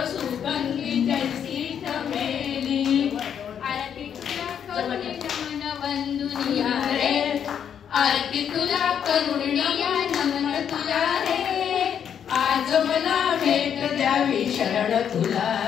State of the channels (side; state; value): right; quieter; 8.4 dB